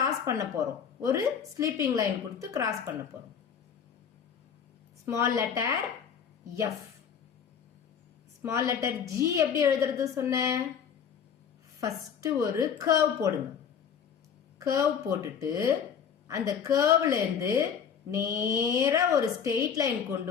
பண்ண போறோம். ஒரு ஸ்லீப்பிங் லைன் கொடுத்து கிராஸ் பண்ண போறோம். Small letter F. Small letter G எப்படி எழுதுறது சொன்னேன்? ஃபர்ஸ்ட் ஒரு கர்வ் போடுங்க. கர்வ் போட்டுட்டு அந்த கர்வ்ல இருந்து நேரா ஒரு ஸ்ட்ரெயிட் லைன்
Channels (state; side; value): quieter; right; 7.5 dB